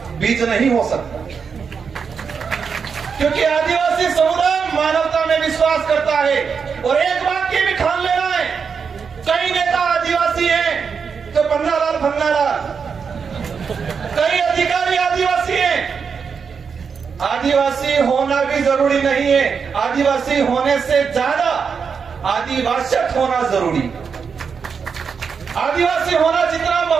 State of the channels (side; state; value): left; quieter; 6.0 dB